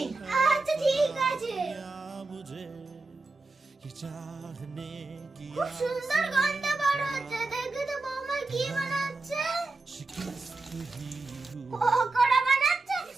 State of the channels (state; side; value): quieter; left; 3.4 dB